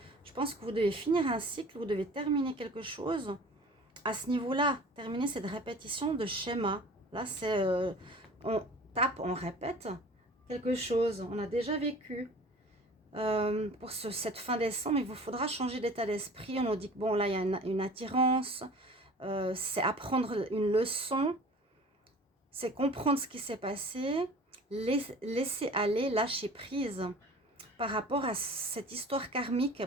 Je pense que vous devez finir un cycle, vous devez terminer quelque chose. À ce niveau-là, terminer cette répétition de schéma. Là, c'est on tape, on répète quelque chose. On a déjà vécu. Pour cette fin décembre, il vous faudra changer d'état d'esprit. On nous dit que bon, là, il y a une attirance. C'est apprendre une leçon. C'est comprendre ce qui s'est passé. Laisser aller, lâcher prise par rapport à cette histoire karmique,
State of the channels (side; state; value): both; normal; correlation 0.44